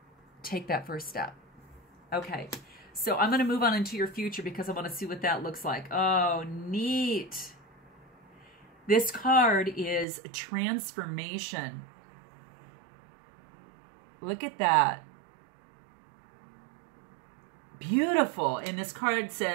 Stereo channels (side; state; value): left; drops out; at 10.1 s